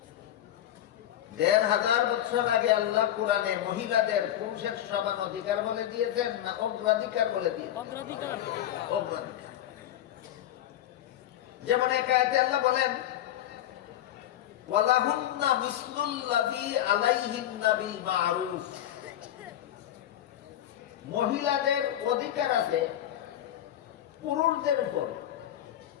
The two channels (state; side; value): quieter; right; 12.1 dB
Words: ১৫০০ বছর আগে আল্লাহ কোরআনে মহিলাদের পুরুষের সমান অধিকার বলে দিয়েছেন না অগ্রাধিকার বলে দিয়েছেন? অগ্রাধিকার। যেমন এক আয়াতে আল্লাহ বলেন, ওয়ালাহুন্না মিসলুল্লাযী আলাইহিন্না বিল মা'রুফ। মহিলাদের অধিকার আছে পুরুষদের উপর,